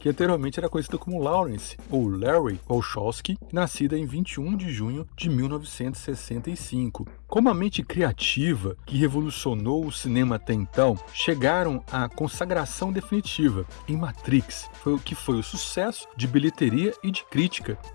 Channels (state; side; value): silent; right; digital silence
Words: anteriormente era conhecida como Lawrence ou Larry Wachowski, nascida em 21 de junho de 1965. Como a mente criativa que revolucionou o cinema até então, chegaram à consagração definitiva em Matrix, que foi o sucesso de bilheteria e de crítica.